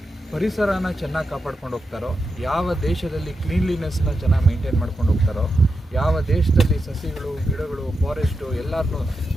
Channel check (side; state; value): both; normal; correlation 0.88